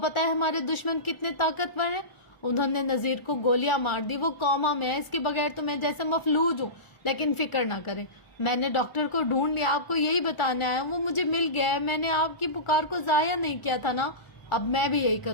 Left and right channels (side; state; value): right; late; 1.0 ms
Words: ہے ہمارے دشمن کتنے طاقتور ہیں. انہوں نے نذیر کو گولیاں مار دی. وہ کوما میں ہے. اس کے بغیر تو میں جیسے مفلوج ہوں. لیکن فکر نہ کریں, میں نے ڈاکٹر کو ڈھونڈ لیا. آپ کو یہی بتانا ہے, وہ مجھے مل گیا ہے. میں نے آپ کی پکار کو ضائع نہیں کیا تھا نا. اب میں بھی یہی